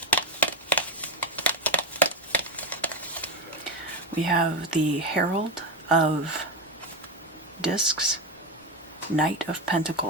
We have the Herald of Discs, Knight of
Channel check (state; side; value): normal; both; correlation 0.13